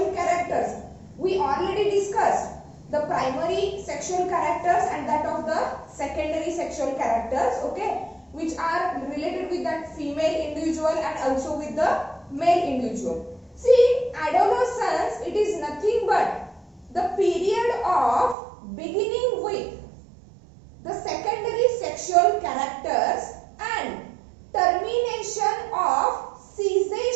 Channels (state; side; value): drops out; left; at 18.4 s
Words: characters. We already discussed the primary sexual characters and that of the secondary sexual characters, okay, which are related with that female individual and also with the male individual. See, adolescence, it is nothing but the period of beginning with the secondary sexual characters and termination of